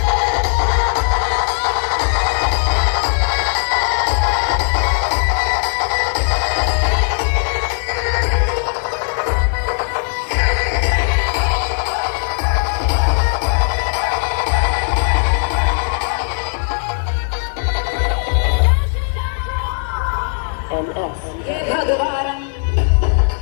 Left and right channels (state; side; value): silent; right; digital silence